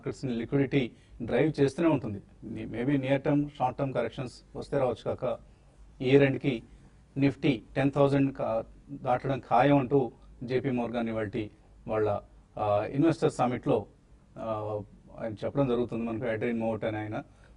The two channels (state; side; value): identical; both; correlation 1.00